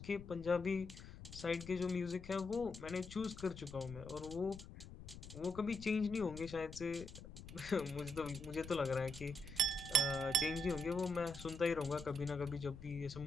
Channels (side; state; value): left; noise; rumble, 13 dB below the sound